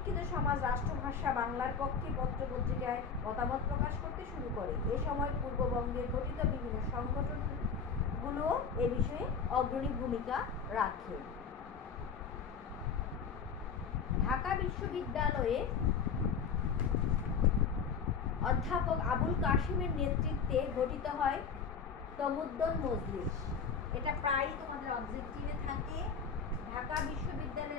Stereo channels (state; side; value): quieter; right; 6.0 dB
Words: সমাজ রাষ্ট্রভাষা বাংলার পক্ষে পত্রপত্রিকায় মতামত প্রকাশ করতে শুরু করে। এ সময় পূর্ববঙ্গে গঠিত বিভিন্ন সংগঠনগুলো এ বিষয়ে অগ্রণী ভূমিকা রাখে। ঢাকা বিশ্ববিদ্যালয়ে অধ্যাপক আবুল কাশিমের নেতৃত্বে গঠিত হয় তমুদ্দুন মজলিস। এটা প্রায়ই তোমাদের অবজেক্টিভে থাকে। ঢাকা